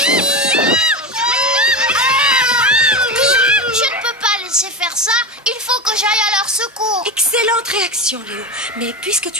Je ne peux pas laisser faire ça. Il faut que j'aille à leur secours. Excellente réaction, Léo. Mais puisque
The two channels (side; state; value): both; normal; correlation 0.20